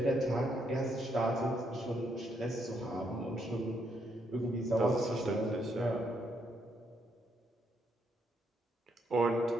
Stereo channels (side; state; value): both; normal; correlation 0.75